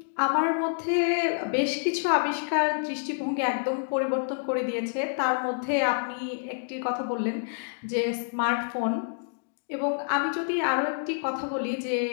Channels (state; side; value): silent; right; digital silence